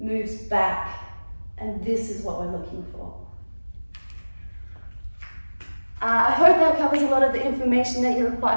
moves back, and this is what we're looking for. I hope that covers a lot of the information that you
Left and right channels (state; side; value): inverted; both; correlation -1.00